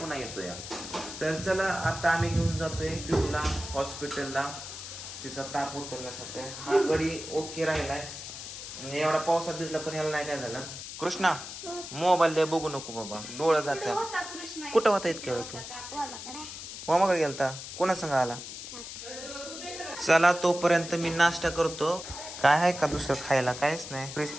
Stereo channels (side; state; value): left; noise; hiss, 10 dB below the sound